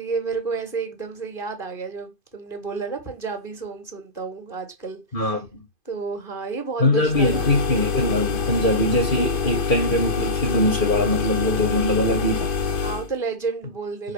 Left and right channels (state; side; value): late; right; 2.5 ms